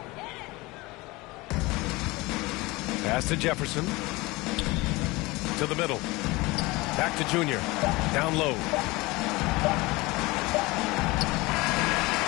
Pass to Jefferson. To the middle. Back to Junior. Down low.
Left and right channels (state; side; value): quieter; right; 22.4 dB